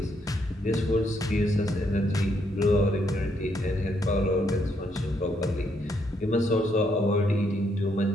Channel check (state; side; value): normal; both; correlation 0.74